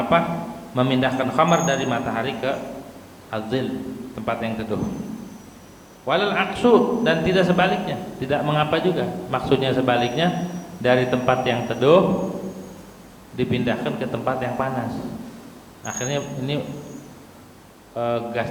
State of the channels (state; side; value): identical; both; correlation 1.00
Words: memindahkan khamar dari matahari ke adzil, tempat yang teduh. Walal aksu, dan tidak sebaliknya, tidak mengapa juga. Maksudnya sebaliknya, dari tempat yang teduh dipindahkan ke tempat yang panas. Akhirnya ini